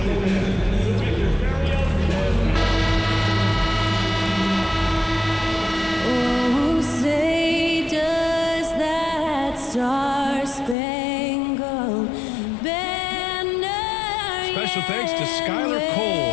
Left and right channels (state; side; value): drops out; right; at 10.8 s